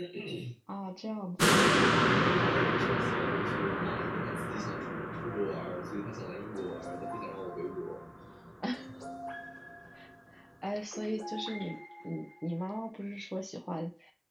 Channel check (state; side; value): identical; both; correlation 1.00